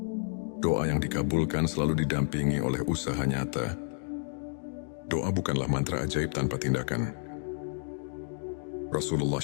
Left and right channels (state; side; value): silent; right; 57 dB below the other